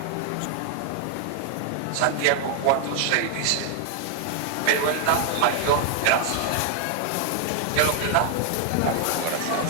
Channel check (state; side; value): different; both; correlation 0.00